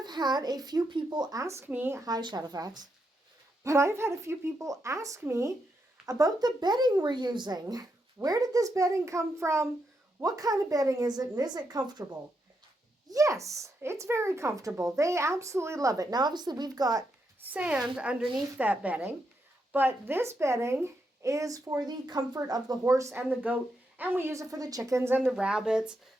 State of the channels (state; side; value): normal; both; correlation 0.82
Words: had a few people ask me, hi Shadowfax, but I've had a few people ask me about the bedding we're using. Where did this bedding come from? What kind of bedding is it, and is it comfortable? Yes, it's very comfortable. They absolutely love it. Now, obviously, we've got sand underneath that bedding, but this bedding is for the comfort of the horse and the goat, and we use it for the chickens and the rabbits,